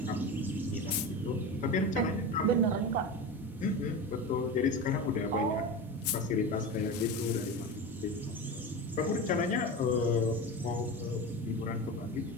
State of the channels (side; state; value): both; normal; correlation 0.25